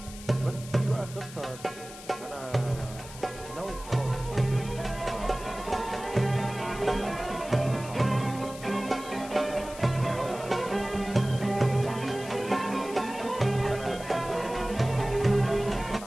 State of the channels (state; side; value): noise; left; hiss, 15 dB below the sound